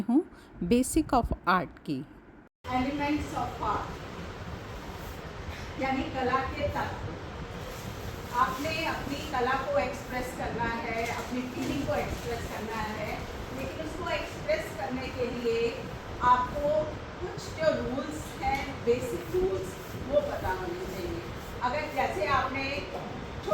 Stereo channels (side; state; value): both; identical; correlation 1.00